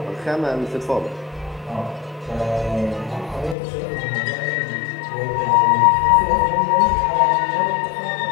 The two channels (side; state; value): right; drops out; at 3.6 s